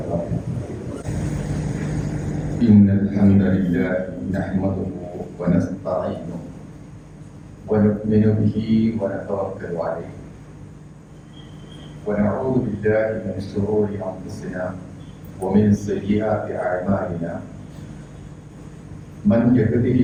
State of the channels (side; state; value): both; identical; correlation 1.00